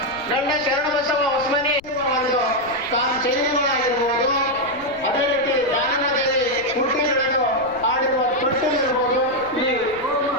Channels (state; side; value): noise; left; rumble, 22 dB below the sound